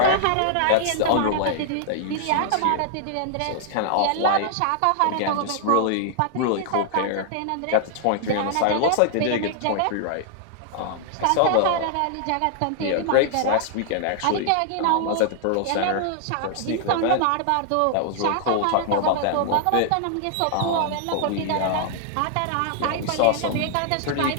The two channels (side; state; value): both; different; correlation 0.00